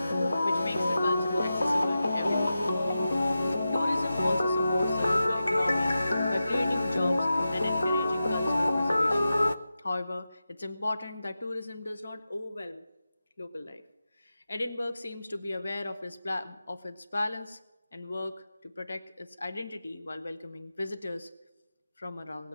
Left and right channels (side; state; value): both; inverted; correlation -0.92